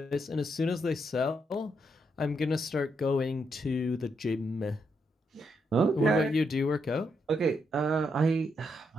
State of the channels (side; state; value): both; normal; correlation 0.79